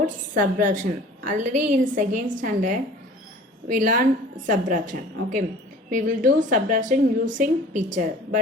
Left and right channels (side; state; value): both; normal; correlation 0.46